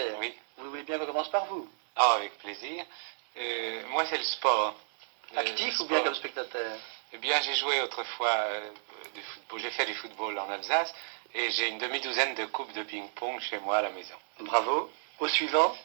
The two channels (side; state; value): left; silent; digital silence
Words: Oui. Vous voulez bien qu'on commence par vous? Ah, avec plaisir. Moi, c'est le sport. Actif Le ou bien sport. comme spectateur? Eh bien, j'ai joué autrefois du football. J'ai fait du football en Alsace et j'ai une demi-douzaine de coupes de ping-pong chez moi à la maison. Bravo. Au suivant?